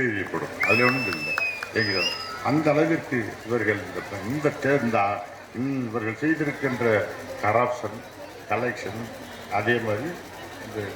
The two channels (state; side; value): identical; both; correlation 1.00